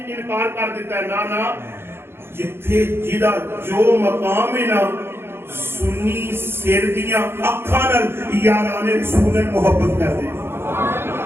انکار کر دیتا ہے نہ جتھے جدا جو مقام ہے نا سنی سر دیاں اکھاں نال یاران رسول محبت کر دے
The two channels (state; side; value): late; left; 0.11 ms